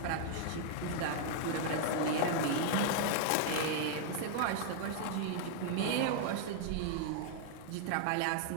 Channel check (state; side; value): different; both; correlation -0.01